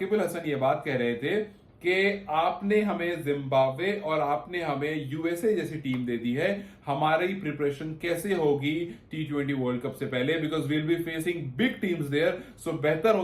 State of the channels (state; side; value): identical; both; correlation 1.00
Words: अल हसन ये बात कह रहे थे कि आपने हमें जिम्बाब्वे और आपने हमें यूएसए जैसी टीम दे दी है, हमारी प्रिपरेशन कैसे होगी T20 वर्ल्ड कप से पहले, because we'll be facing big teams there. So बेहतर